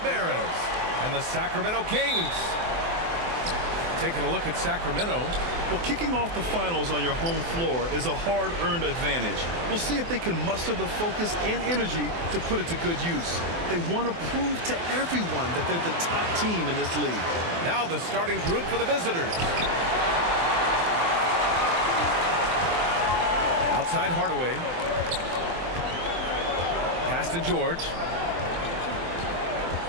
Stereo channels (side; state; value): left; late; 24 ms